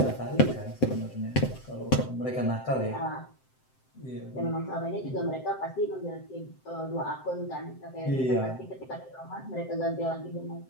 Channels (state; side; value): late; right; 7.7 ms